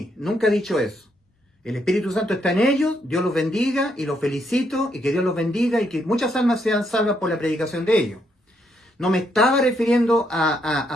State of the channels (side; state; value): both; normal; correlation 0.75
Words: Nunca he dicho eso. El Espíritu Santo está en ellos, Dios los bendiga y los felicito, y que Dios los bendiga y que muchas almas sean salvas por la predicación de ellos. No me estaba refiriendo a